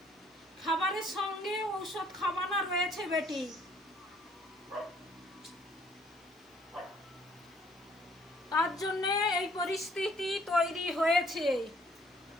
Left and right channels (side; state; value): both; normal; correlation 0.62